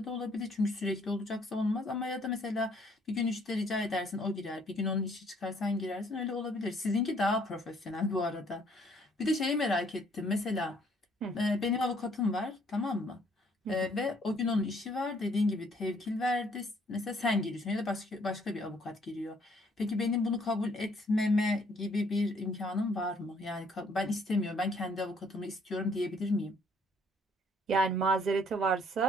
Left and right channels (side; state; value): both; normal; correlation 0.64